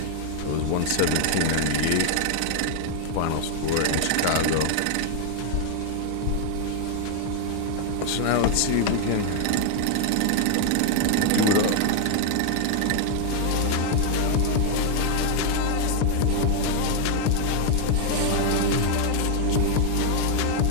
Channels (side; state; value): both; different; correlation 0.00